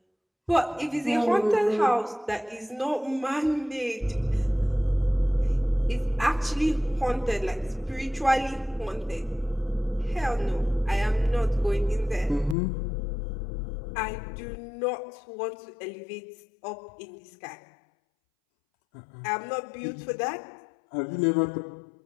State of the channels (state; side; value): drops out; right; at 12.6 s